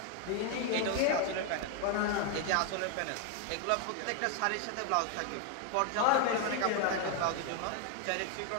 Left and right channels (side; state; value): both; different; correlation 0.01